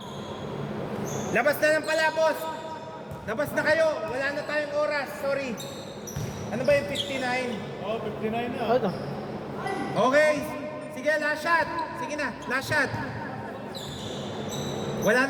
Labas na lang pala, boss. Labas na kayo. Wala na tayong oras. Sorry. Ano ba yung 59? Oh, 59 na. Ano? Okay. Sige, last shot. Sige na, last shot. Wala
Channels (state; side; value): identical; both; correlation 1.00